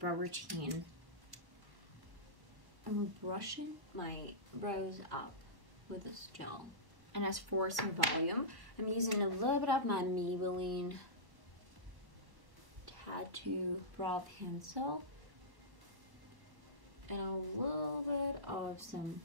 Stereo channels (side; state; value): left; late; 1.1 ms